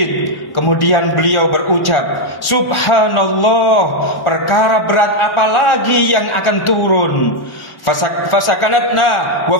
Kemudian beliau berucap, subhanallah, perkara berat apa lagi yang akan turun. Fasakanatna wa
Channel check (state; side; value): late; right; 1.1 ms